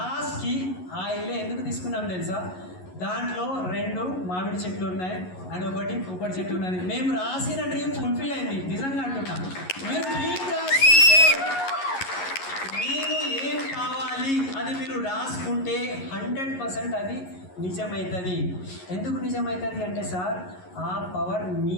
ఆ ఇల్లు ఎందుకు తీసుకున్నాం తెలుసా? దాంట్లో 2 మామిడి చెట్లు ఉన్నాయి అండ్ 1 కొబ్బరి చెట్టు ఉన్నది. మేము రాసిన డ్రీమ్ ఫుల్ఫిల్ అయింది, నిజంగా అంటున్నాం. మీరు డ్రీమ్ రాసుకుంటే, మీరు ఏం కావాలి అది మీరు రాసుకుంటే 100% అది నిజమవుతుంది. ఎందుకు నిజమవుతుంది అంటే సార్, ఆ పవర్ మీ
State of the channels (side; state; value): right; late; 11 ms